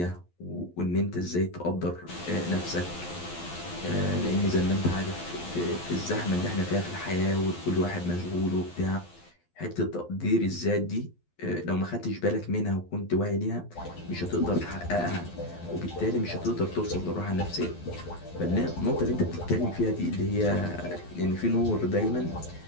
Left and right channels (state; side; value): late; right; 12 ms